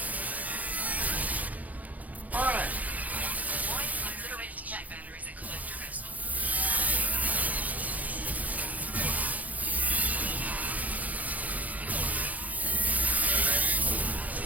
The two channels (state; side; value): late; left; 0.077 ms